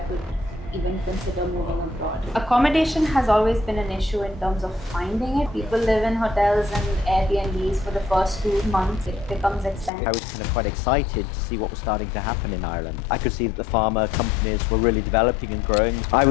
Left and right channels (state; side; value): drops out; right; at 9.9 s